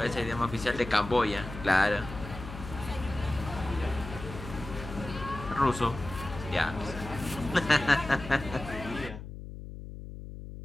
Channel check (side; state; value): left; noise; hum, 11 dB below the sound